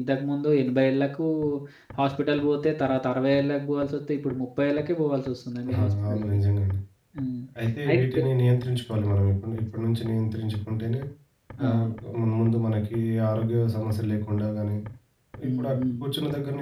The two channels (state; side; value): identical; both; correlation 1.00